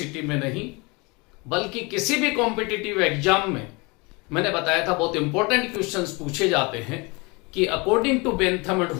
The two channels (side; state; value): right; quieter; 27.4 dB